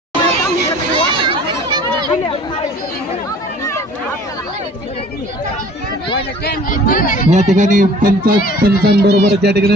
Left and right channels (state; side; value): normal; both; correlation 0.50